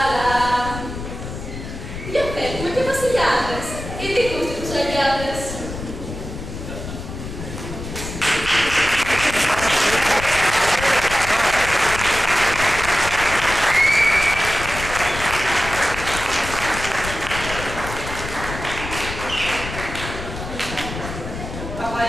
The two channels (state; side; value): noise; left; rumble, 9 dB below the sound